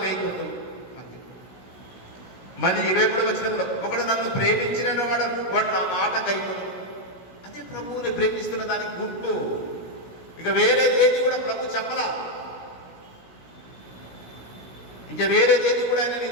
గైకొందురు. మళ్ళీ 23వ వచనంలో ఒకడు నన్ను ప్రేమించిన వాడు నా మాట గైకొందురు. అదే ప్రభువుని ప్రేమిస్తున్న దానికి గుర్తు. ఇక వేరేది ఏది కూడా ప్రభు చెప్పలా. ఇంకా వేరేదేది కూడా ఆయన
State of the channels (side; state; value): right; late; 16 ms